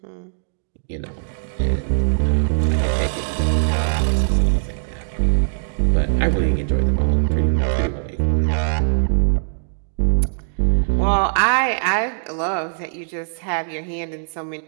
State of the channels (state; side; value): silent; left; digital silence